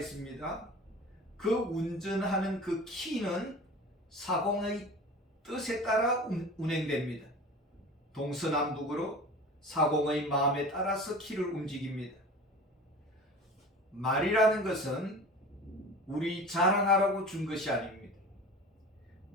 그 운전하는 그 키는 사공의 뜻에 따라 운행됩니다. 동서남북으로 사공의 마음에 따라서 키를 움직입니다. 말이라는 것은 우리 자랑하라고 준 것이 아닙니다.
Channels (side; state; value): both; normal; correlation 0.38